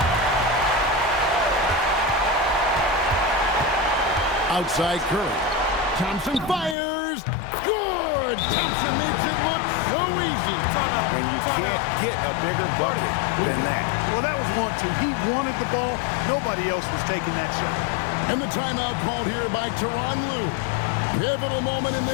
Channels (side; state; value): right; drops out; at 6.8 s